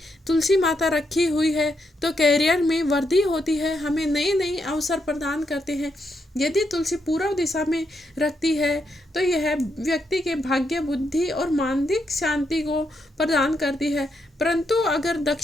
तुलसी माता रखी हुई है तो कैरियर में वृद्धि होती है, हमें नए नए अवसर प्रदान करते हैं। यदि तुलसी पूर्व दिशा में रखती है तो यह व्यक्ति के भाग्य, बुद्धि और मानसिक शांति को प्रदान करती है। परंतु अगर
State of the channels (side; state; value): both; normal; correlation 0.80